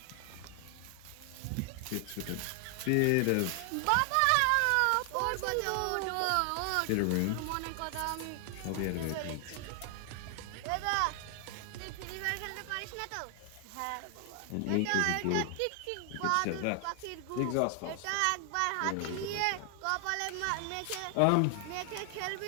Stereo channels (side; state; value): both; different; correlation 0.00